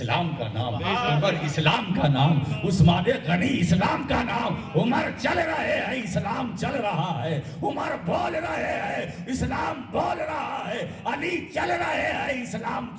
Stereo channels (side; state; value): both; identical; correlation 1.00